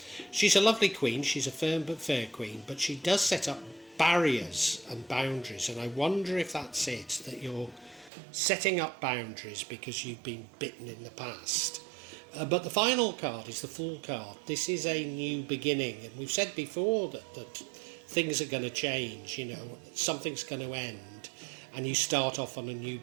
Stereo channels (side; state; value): left; drops out; at 8.1 s